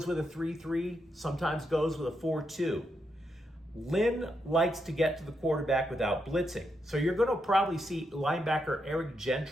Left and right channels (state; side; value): normal; both; correlation 0.82